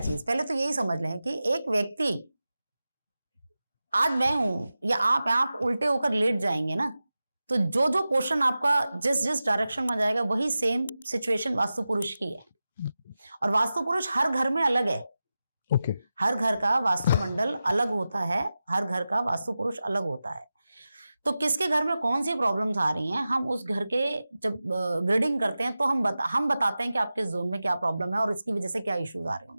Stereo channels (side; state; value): both; inverted; correlation -0.94